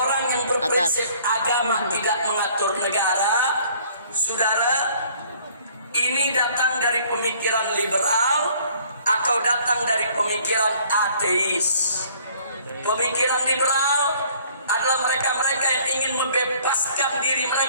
yang berprinsip agama tidak mengatur negara, saudara, ini datang dari pemikiran liberal atau datang dari pemikiran ateis. Pemikiran liberal adalah mereka-mereka yang ingin membebaskan diri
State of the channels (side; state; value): both; inverted; correlation -0.57